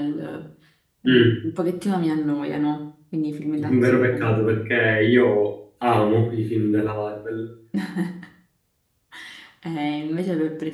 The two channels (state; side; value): identical; both; correlation 1.00